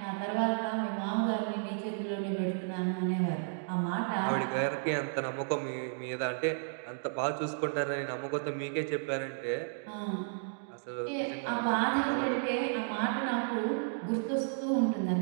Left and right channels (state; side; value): silent; left; digital silence